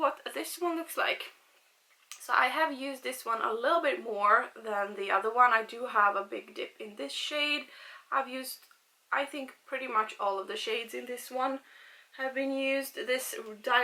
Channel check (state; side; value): identical; both; correlation 1.00